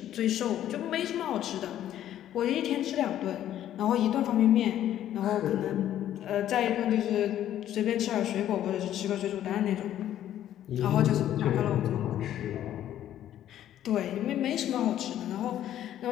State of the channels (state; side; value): quieter; right; 11.7 dB